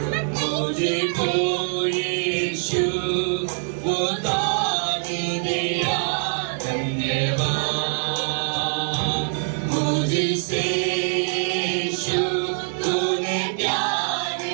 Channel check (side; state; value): left; silent; digital silence